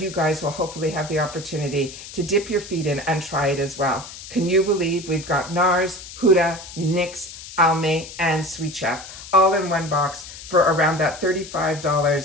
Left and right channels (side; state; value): left; noise; hiss, 14 dB below the sound